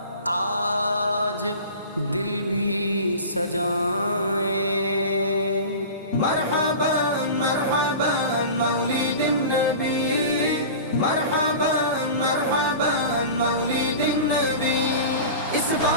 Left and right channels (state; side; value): inverted; both; correlation -0.34